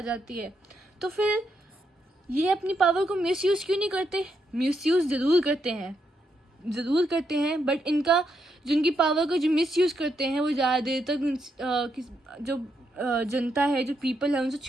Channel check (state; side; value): normal; both; correlation 0.80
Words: जाती है, तो फिर ये अपनी पावर को मिसयूज़ क्यों नहीं करते? मिसयूज़ ज़रूर करते हैं, बट जिनकी पावर को जो मिसयूज़ करते हैं वो ज़्यादा देर तक जो जनता है, जो पीपल है, उनसे